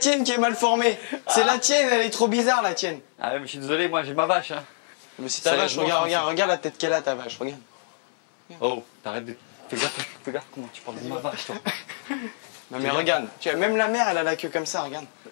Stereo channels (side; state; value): right; silent; 61 dB below the other